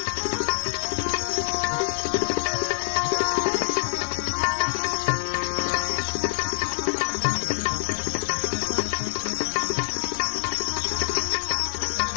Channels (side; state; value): right; silent; digital silence